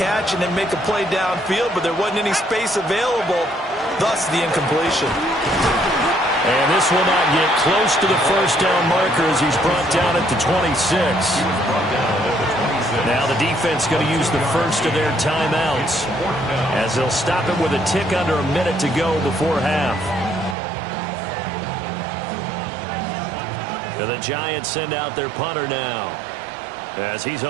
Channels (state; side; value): drops out; left; at 20.6 s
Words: and then make a play downfield, but there wasn't any space available, thus the incompletion. And this will not get close to the 1st down marker as he's brought down at the 26. Now the defense going to use the first of their timeouts as they'll stop it with a tick under a minute to go before half. The Giants send out their punter now. as he's